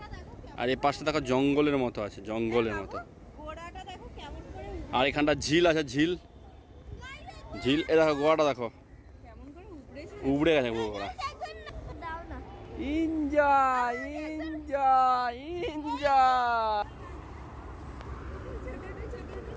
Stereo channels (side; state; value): both; identical; correlation 1.00